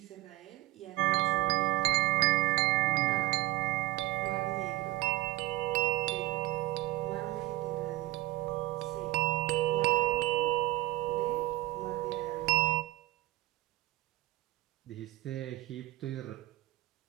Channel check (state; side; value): quieter; left; 18.6 dB